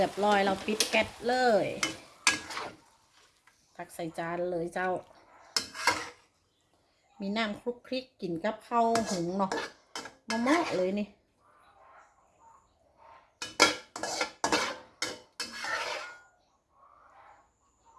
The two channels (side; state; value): both; identical; correlation 1.00